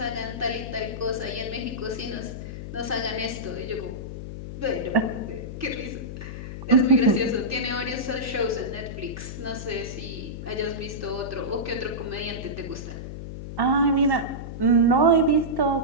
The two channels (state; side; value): noise; left; hum, 8 dB below the sound